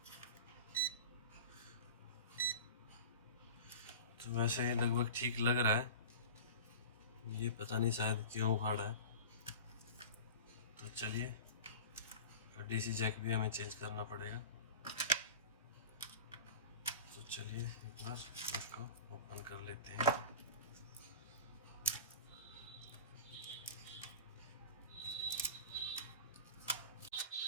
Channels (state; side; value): inverted; both; correlation -0.34